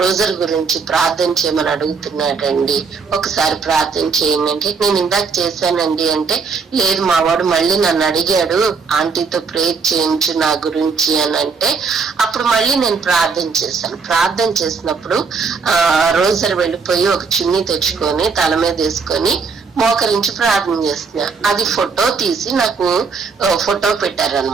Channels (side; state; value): left; quieter; 5.1 dB